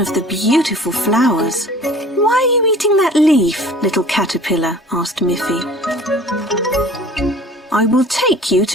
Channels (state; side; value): normal; both; correlation 0.46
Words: the beautiful flowers. "Why are you eating that leaf, little caterpillar?" asked Miffy. "I will take you